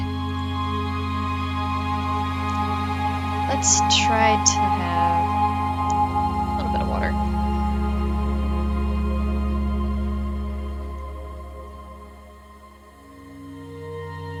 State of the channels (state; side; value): identical; both; correlation 1.00